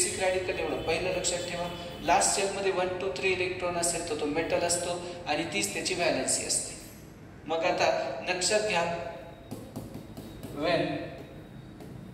रॅडिकल, एवढं पहिलं लक्षात ठेवा. लास्ट शेलमध्ये 1 2 3 इलेक्ट्रॉन असेल तर तो मेटल असतो आणि तीच त्याची व्हॅलेन्सी असते. मग आता लक्षात घ्या, when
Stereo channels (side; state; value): both; identical; correlation 1.00